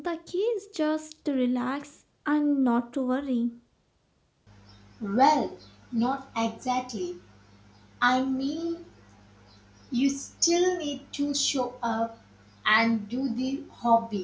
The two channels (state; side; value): identical; both; correlation 1.00